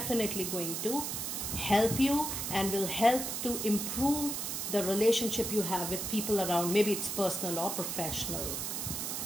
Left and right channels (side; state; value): right; noise; hiss, 3 dB below the sound